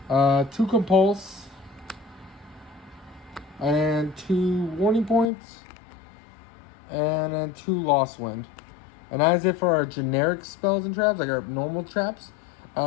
Compulse, and 2 Warning Points, and then 2 Lost Wind. And that is it for our generic spells and traps, like our normal traps.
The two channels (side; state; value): right; drops out; at 5.2 s